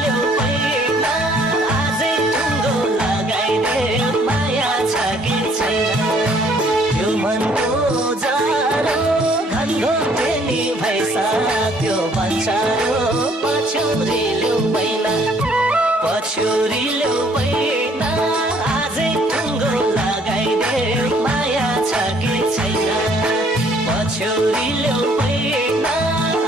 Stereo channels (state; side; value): normal; both; correlation 0.62